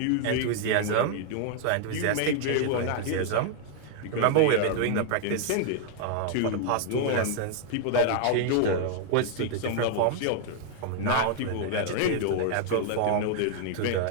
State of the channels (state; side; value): different; both; correlation 0.00